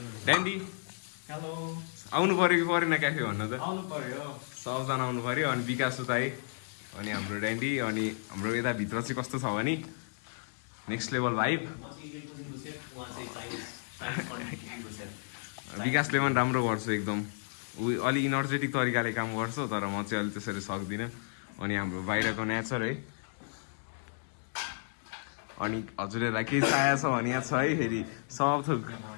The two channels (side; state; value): right; silent; digital silence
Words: ड्यान्डी हेलो आउनु पर्यो कि परेन क्याफे भन्न त? आउनु पर्यो। सबजना आउनु पर्यो। अनि विकास उताई अनि हाम्रो ड्यान्डी। अनि हाम्रो यता भित्र चाहिँ कस्तो छ भने नेक्स्ट लेभल भाइब। विकासले पनि राम्रो गर्छ एकदम। ऊ अलि इनर्जेटिक तरिकाले काम गर्छ, तर म चाहिँ अलि त्यसरी सक्दिनँ। अनि हाम्रो बाहिरको नेचर है। अनि हजुरहरूलाई केही चाहिएको छ भने यहाँ छ है। फेरि सब थोक